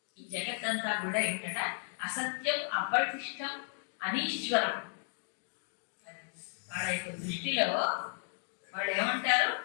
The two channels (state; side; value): silent; right; digital silence